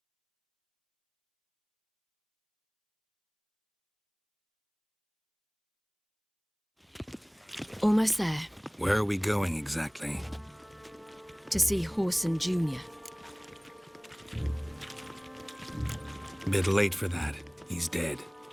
Almost there. Where are we going exactly? To see Horson Jr. Bit late for that. He's dead.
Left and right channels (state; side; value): identical; both; correlation 1.00